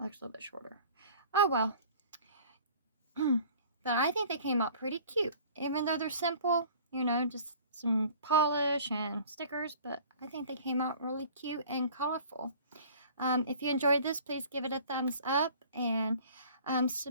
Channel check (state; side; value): inverted; both; correlation -0.48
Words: looks a little bit shorter. Oh, well. But I think they came out pretty cute. Even though they're simple, you know, just some polish and stickers, but I think they came out really cute and colorful. If you enjoyed this, please give it a thumbs up and